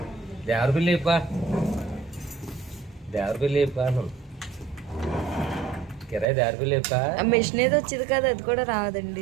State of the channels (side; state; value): left; drops out; at 6.2 s